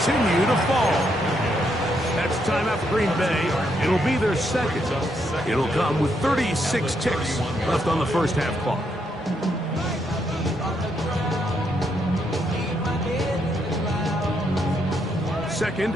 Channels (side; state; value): both; normal; correlation 0.77